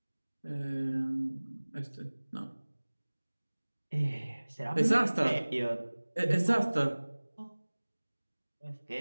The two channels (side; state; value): both; inverted; correlation -1.00